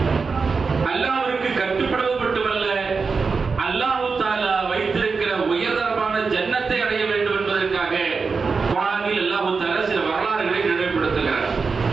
அல்லாஹ்விற்கு கட்டுப்படுவது மட்டுமல்ல, அல்லாஹ் தஆலா வைத்திருக்கிற உயர்தரமான ஜன்னத்தை அடைய வேண்டும் என்பதற்காக குர்ஆனில் அல்லாஹ் தஆலா சில வரலாறுகளை நினைவுபடுத்துகிறார்.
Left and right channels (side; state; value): left; quieter; 4.8 dB